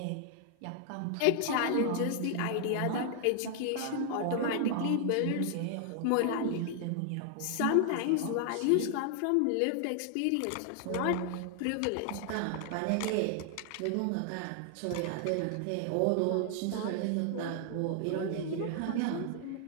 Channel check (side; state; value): both; different; correlation 0.00